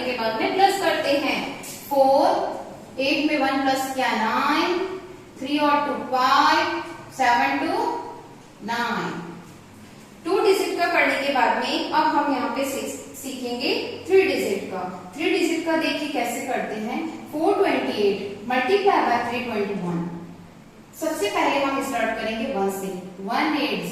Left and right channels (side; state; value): both; identical; correlation 1.00